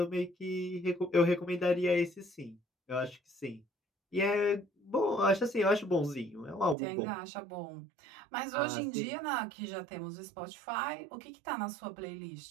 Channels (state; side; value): drops out; left; at 6.8 s